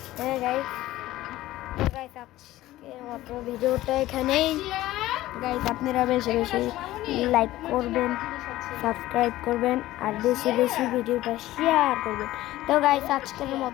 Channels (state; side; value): quieter; right; 15.9 dB